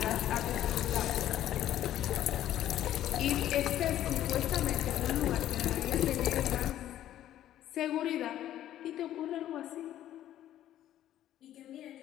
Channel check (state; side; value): quieter; right; 12.3 dB